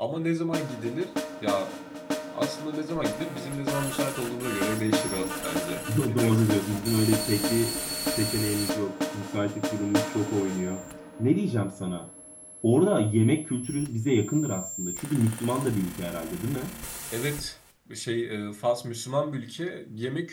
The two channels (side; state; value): both; identical; correlation 1.00